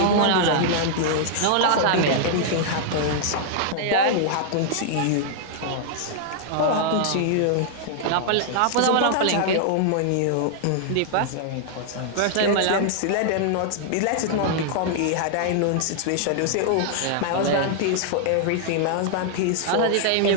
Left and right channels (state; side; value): different; both; correlation -0.01